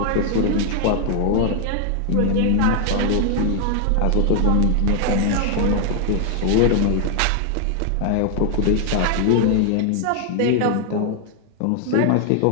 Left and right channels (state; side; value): different; both; correlation 0.00